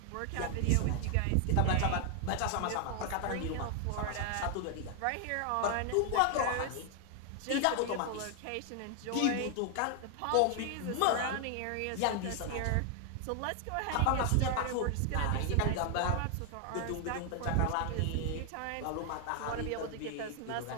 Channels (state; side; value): different; both; correlation 0.00